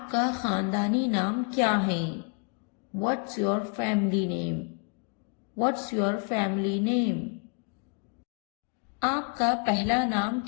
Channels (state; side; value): quieter; right; 39.0 dB